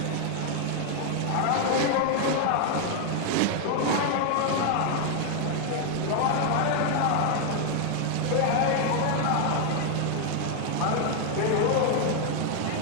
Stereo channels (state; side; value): different; both; correlation 0.00